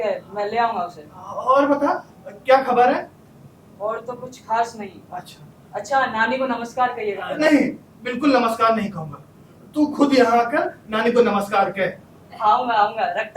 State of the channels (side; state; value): both; identical; correlation 1.00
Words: मैं ले आऊंगा उसे। और बता क्या खबर है? और तो कुछ खास नहीं। अच्छा नानी को नमस्कार कहिएगा। नहीं, बिल्कुल नमस्कार नहीं कहूंगा, तू खुद यहाँ आकर नानी को नमस्कार कह। आऊंगा,